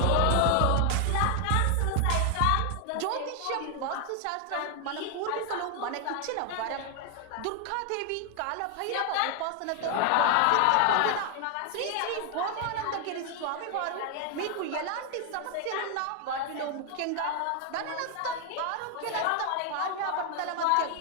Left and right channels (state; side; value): different; both; correlation 0.00